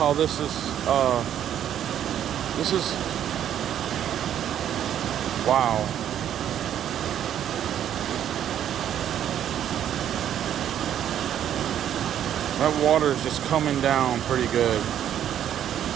this is. Wow. That water is just coming down pretty good.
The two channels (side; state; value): left; quieter; 10.3 dB